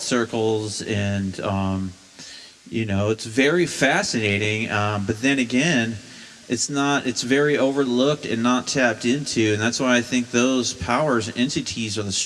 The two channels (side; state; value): both; identical; correlation 1.00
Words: circles, and it's very fascinating, but then again, it's very overlooked and not tapped into, and that's why I think those powers and entities are the